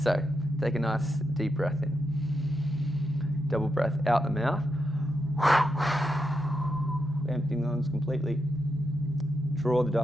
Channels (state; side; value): normal; both; correlation 0.84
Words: take a nice deep breath in. Double breath out the mouth. Emptying the lungs completely. Draw the